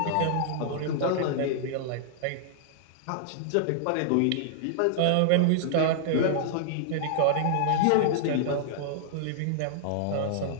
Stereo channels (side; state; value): both; different; correlation -0.01